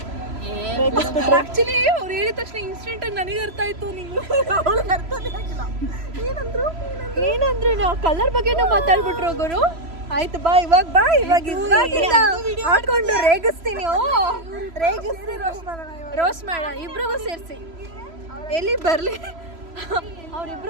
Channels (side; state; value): left; late; 3.0 ms